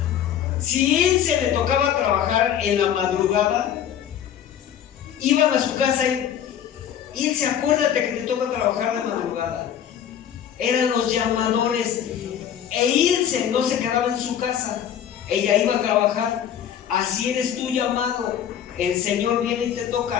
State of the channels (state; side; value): quieter; right; 9.6 dB